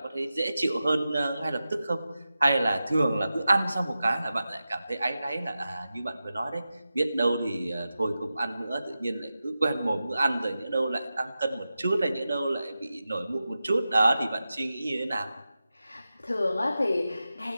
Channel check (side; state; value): both; inverted; correlation -0.93